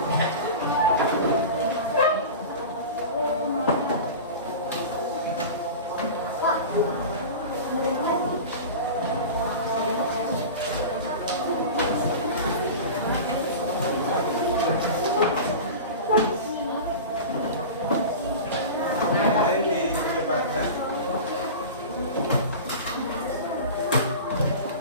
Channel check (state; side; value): inverted; both; correlation -0.31